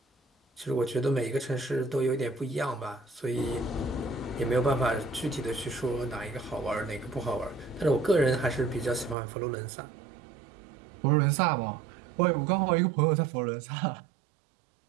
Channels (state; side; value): drops out; left; at 9.2 s